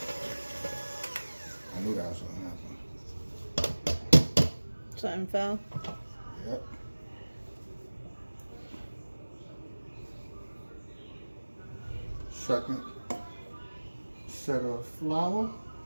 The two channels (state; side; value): inverted; both; correlation -1.00